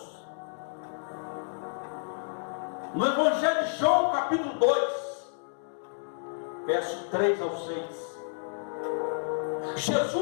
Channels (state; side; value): silent; right; digital silence